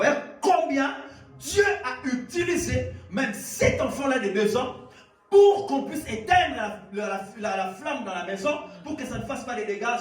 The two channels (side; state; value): both; identical; correlation 1.00